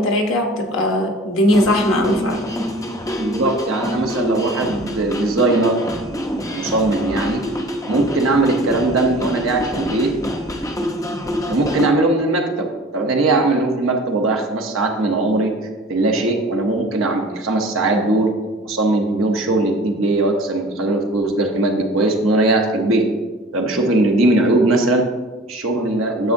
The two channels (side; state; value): both; normal; correlation 0.44